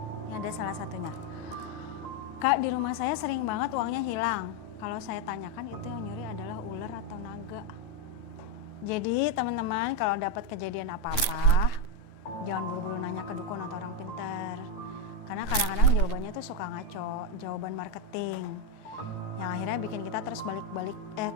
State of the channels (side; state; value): right; late; 9.3 ms